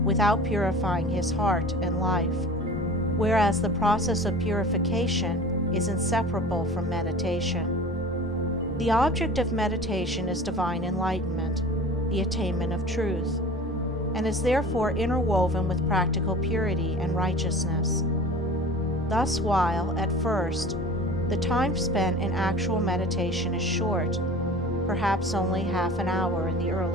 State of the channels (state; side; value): normal; both; correlation 0.40